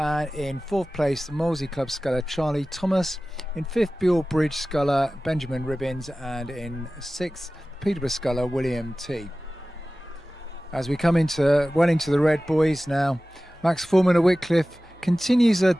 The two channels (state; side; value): normal; both; correlation 0.97